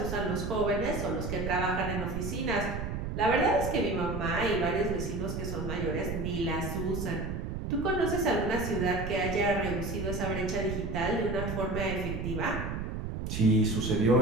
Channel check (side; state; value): right; noise; rumble, 4 dB below the sound